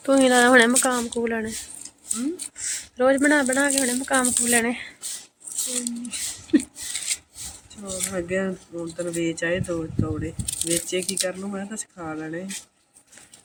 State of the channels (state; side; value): identical; both; correlation 1.00